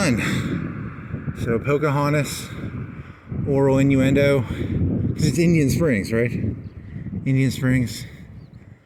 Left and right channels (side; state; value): both; identical; correlation 1.00